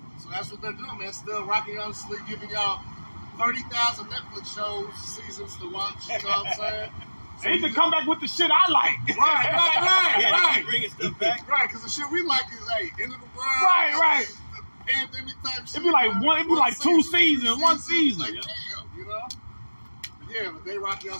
So that's what they're doing, man. Still rocking y'all to sleep, giving y'all 30,000 Netflix shows, seasons to watch. You know what I'm saying? So They need to come back with the shit I like. Right. Bringing stuff back. Right, because the shit we like is, hey, end of the world. Right. The pandemic type shit. It'd be like two seasons, one season. Like, damn, you know? Yeah, but they rock y'all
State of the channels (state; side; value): inverted; both; correlation -1.00